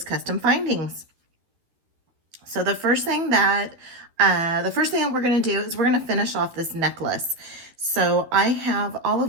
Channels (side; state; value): left; late; 12 ms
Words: custom findings. So the first thing that we're going to do is we're going to finish off this necklace. So I have all